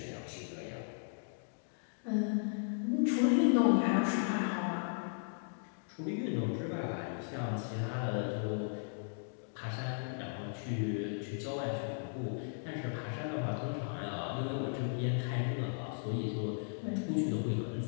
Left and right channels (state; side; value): silent; right; digital silence